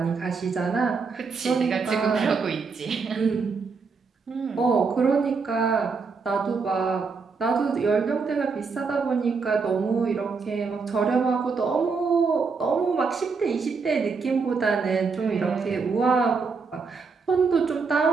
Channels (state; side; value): quieter; left; 4.9 dB